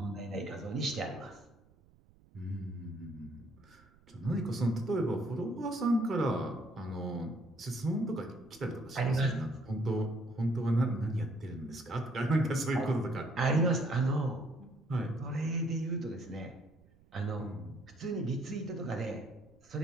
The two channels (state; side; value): noise; right; rumble, 28 dB below the sound